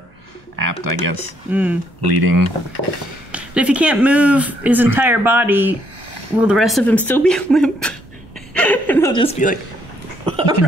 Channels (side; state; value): both; normal; correlation 0.71